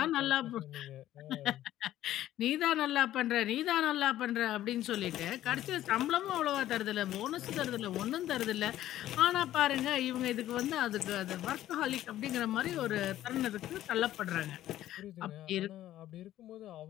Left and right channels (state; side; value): quieter; right; 13.3 dB